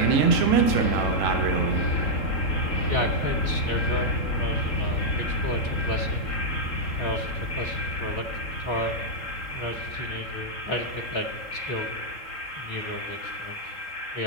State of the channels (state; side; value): late; right; 3.7 ms